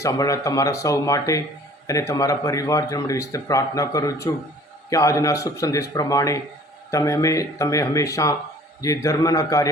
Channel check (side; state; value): both; normal; correlation 0.51